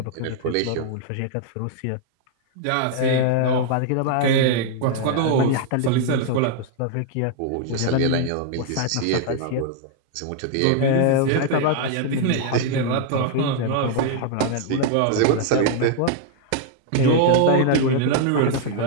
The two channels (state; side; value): different; both; correlation 0.00